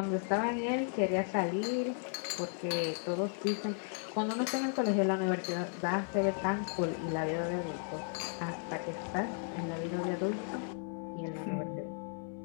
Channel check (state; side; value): silent; right; 54 dB below the other